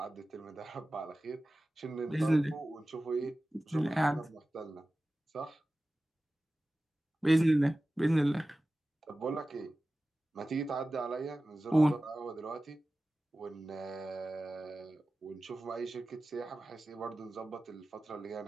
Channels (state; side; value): normal; both; correlation 0.96